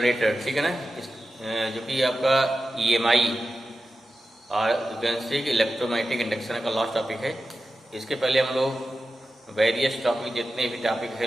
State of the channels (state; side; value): normal; both; correlation 0.92